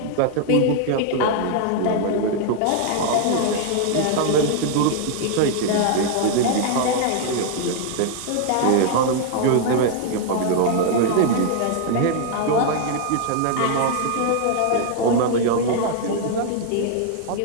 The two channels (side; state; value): both; different; correlation 0.00